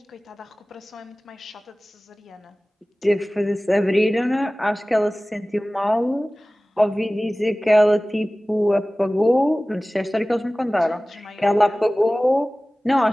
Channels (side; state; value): both; normal; correlation 0.98